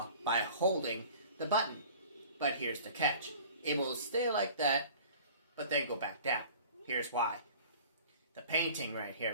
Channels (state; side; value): inverted; both; correlation -0.46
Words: by holding the button. But here's the catch. It will stay like that, but then go back down. Here's why. The painting right here